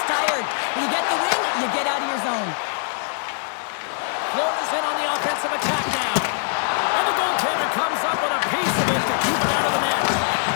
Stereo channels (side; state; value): right; silent; digital silence